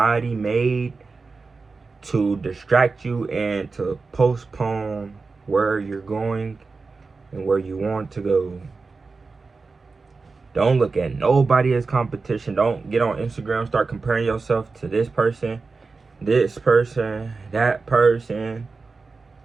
made to distract you and to postpone where you're going and where you want to go. Don't look at nobody as competition. Don't get on Instagram, start comparing yourself to this person, that person,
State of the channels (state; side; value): quieter; left; 4.2 dB